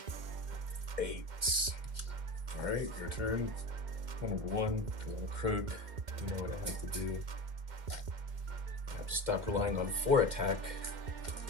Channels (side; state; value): left; late; 2.1 ms